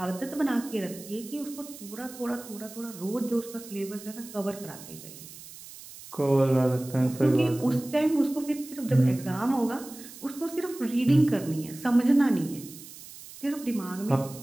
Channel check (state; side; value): noise; right; hiss, 16 dB below the sound